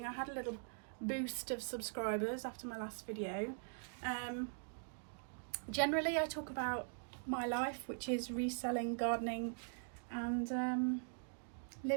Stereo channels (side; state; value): left; silent; digital silence